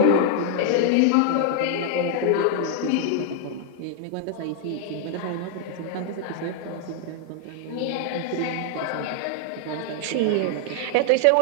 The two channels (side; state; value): both; different; correlation 0.00